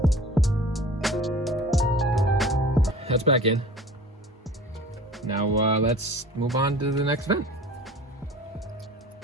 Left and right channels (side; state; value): both; normal; correlation 0.42